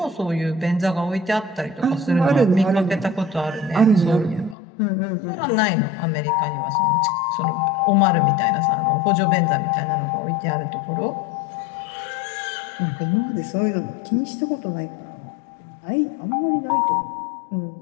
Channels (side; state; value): right; drops out; at 4.5 s